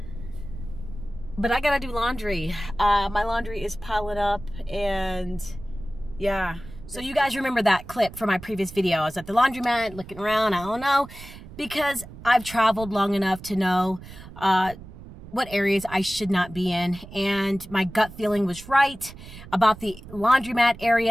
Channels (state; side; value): noise; right; rumble, 16 dB below the sound